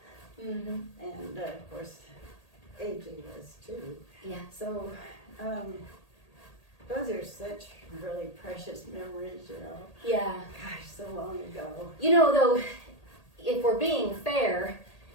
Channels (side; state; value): right; late; 1.8 ms